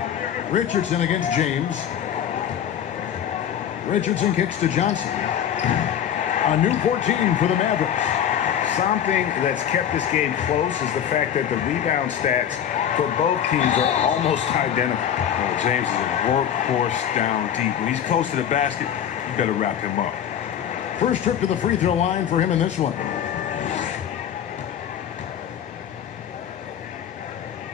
Richardson against James. Richardson kicks to Johnson. A new 14 for the Mavericks. Something that's kept this game close is the fact that the rebound stats for both teams are almost identical. Well, James is a workhorse down deep. When he's close to the basket, you better wrap him up. First trip to the free throw line for him in this one.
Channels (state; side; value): quieter; right; 9.5 dB